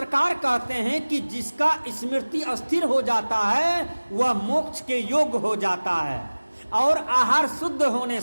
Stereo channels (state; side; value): inverted; both; correlation -1.00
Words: कहते हैं कि जिसका स्मृति अस्थिर हो जाता है वह मोक्ष के योग्य हो जाता है, और आहार शुद्ध होने